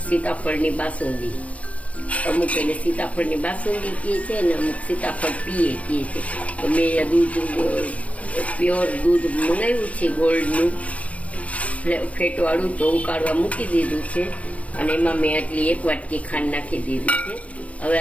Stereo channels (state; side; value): late; right; 0.066 ms